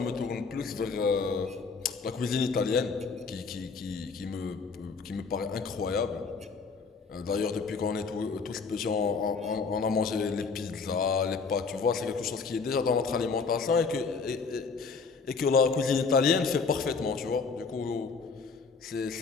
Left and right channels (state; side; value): quieter; right; 4.9 dB